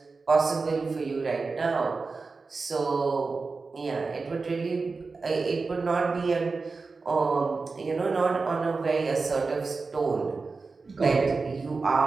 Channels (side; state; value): left; quieter; 4.2 dB